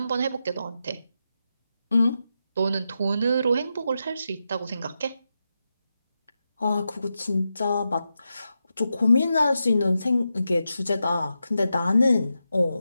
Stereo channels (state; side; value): inverted; both; correlation -0.88